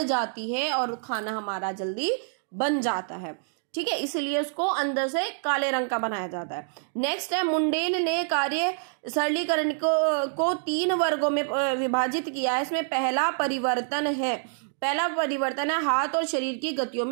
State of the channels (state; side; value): silent; left; digital silence